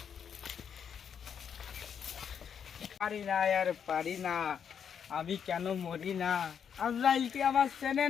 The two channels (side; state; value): right; quieter; 7.7 dB